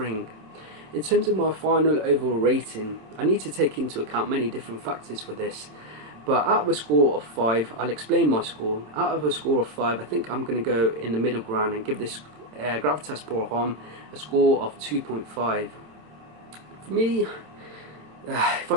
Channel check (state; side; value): late; left; 27 ms